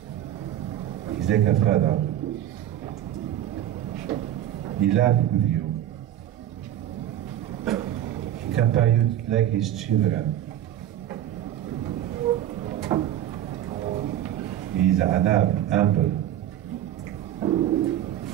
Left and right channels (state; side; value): quieter; left; 11.8 dB